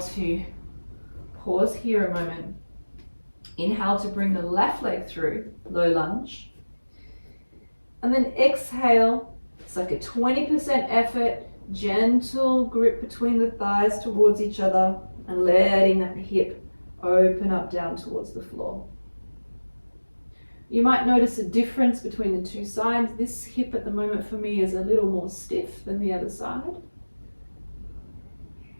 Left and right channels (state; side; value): inverted; both; correlation -1.00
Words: to pause here a moment. Inhale to bring the left leg through, low lunge. And then exhale, it's like a 20% effort, gentle grip between the thighs towards each other and letting that hip open up down towards the floor. You might notice a difference between the 2 sides. This hip at the moment for me is a little more stiff than the other side.